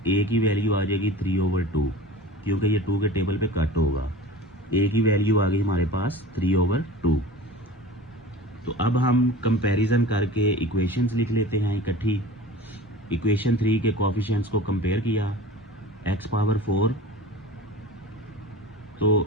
की वैल्यू आ जाएगी 3/2, क्योंकि ये 2 के टेबल पे कट होगा। a की वैल्यू आ गई हमारे पास 3/2। तो अब हम कंपैरिजन करके इक्वेशंस लिख लेते हैं इकट्ठी। इक्वेशन 3 के कोफिशिएंट्स को कंपेयर किया, x पावर 4 तो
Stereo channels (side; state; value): both; normal; correlation 0.37